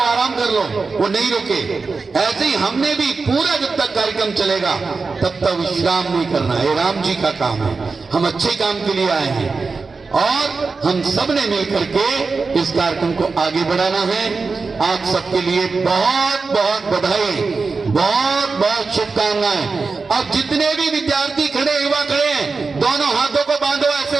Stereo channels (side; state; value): left; quieter; 4.4 dB